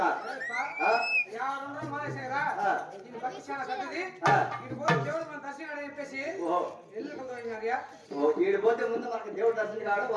వీడు పోతే ముందు మనకి దేవుడు దర్శనం కావడం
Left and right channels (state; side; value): identical; both; correlation 1.00